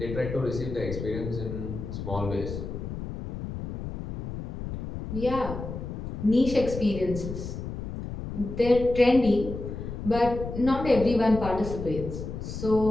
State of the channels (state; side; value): noise; left; rumble, 7 dB below the sound